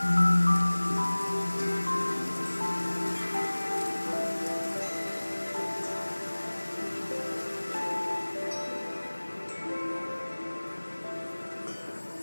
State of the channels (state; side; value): inverted; both; correlation -1.00